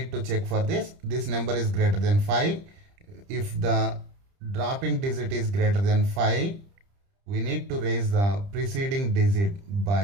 to check for this. This number is greater than 5. If the dropping digit is greater than 5, we need to raise the preceding digit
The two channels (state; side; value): late; left; 30 ms